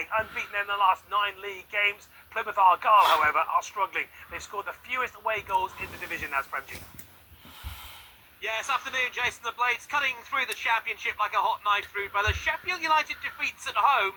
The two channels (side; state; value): both; identical; correlation 1.00